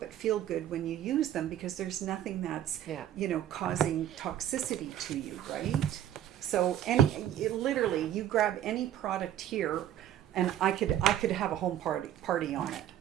but feel good when you use them, because there's nothing that's causing toxicity to you, right? So literally, you grab any product here, and I could have a home party on it.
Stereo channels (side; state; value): left; quieter; 11.3 dB